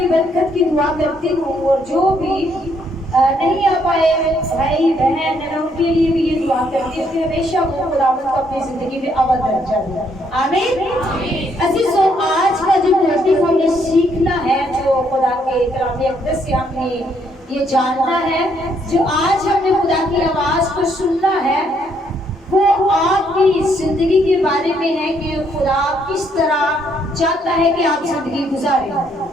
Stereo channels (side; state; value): both; normal; correlation 0.71